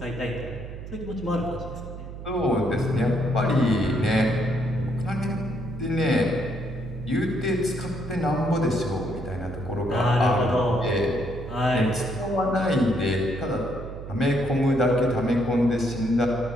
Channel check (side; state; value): right; noise; hum, 11 dB below the sound